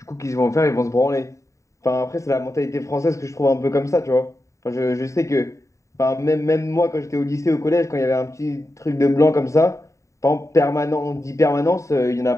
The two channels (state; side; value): late; right; 0.15 ms